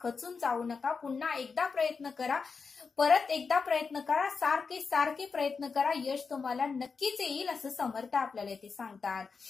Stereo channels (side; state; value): right; quieter; 5.0 dB